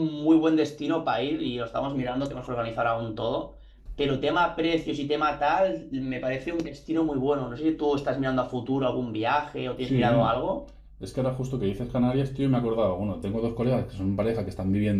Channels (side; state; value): both; identical; correlation 1.00